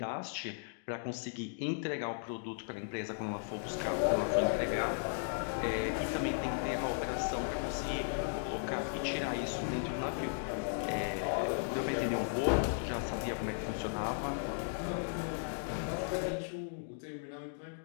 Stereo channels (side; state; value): right; silent; digital silence